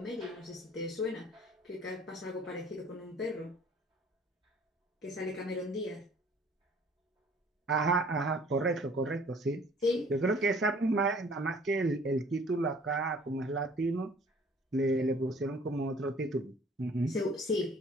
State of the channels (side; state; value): both; normal; correlation 0.54